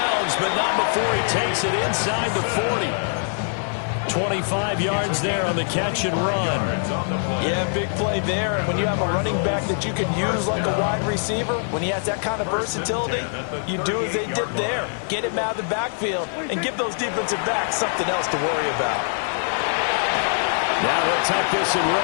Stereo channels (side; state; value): right; silent; digital silence